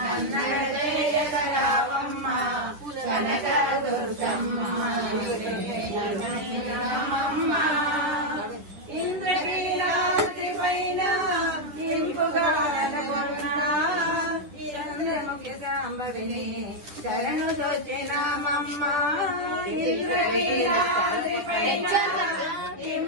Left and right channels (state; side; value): late; left; 10 ms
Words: జయగరావమ్మ కనకదుర్గమ్మ రామమ్మ ఇంద్రకీలాద్రి పైన ఇంపుగా చంద్రముఖి సాంబవిని శరణు దోచినామమ్మ ఇంద్రకీలాద్రి పైన